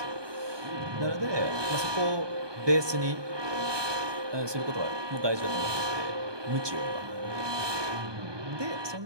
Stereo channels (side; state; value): left; late; 1.2 ms